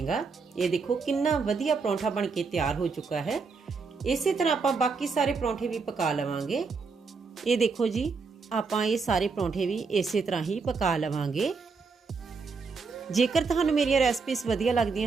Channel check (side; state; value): left; quieter; 4.7 dB